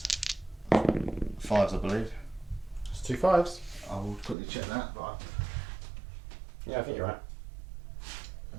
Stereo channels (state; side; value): drops out; left; at 4.4 s